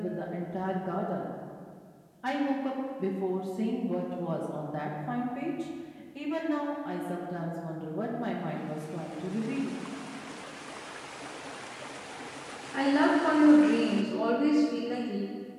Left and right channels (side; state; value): both; identical; correlation 1.00